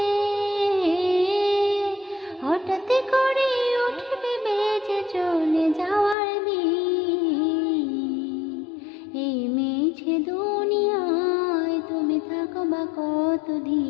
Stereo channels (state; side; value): drops out; right; at 6.2 s